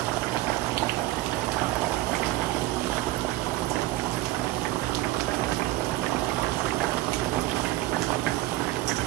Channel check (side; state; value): left; quieter; 17.2 dB